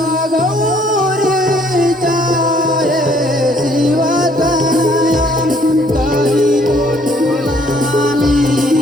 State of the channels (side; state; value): both; normal; correlation 0.63